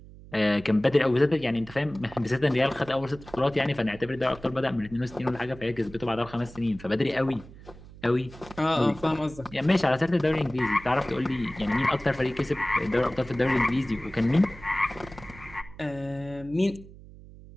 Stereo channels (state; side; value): noise; right; hum, 19 dB below the sound